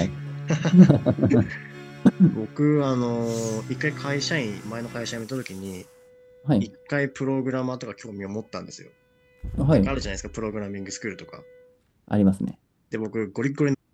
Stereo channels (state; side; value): identical; both; correlation 1.00